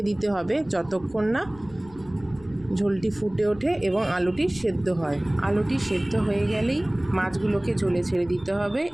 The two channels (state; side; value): noise; left; rumble, 22 dB below the sound